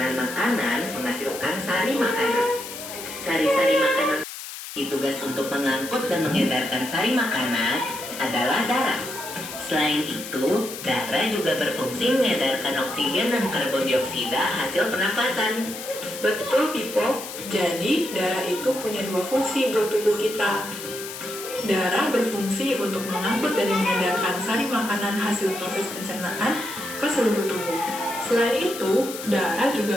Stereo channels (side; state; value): left; noise; hiss, 10 dB below the sound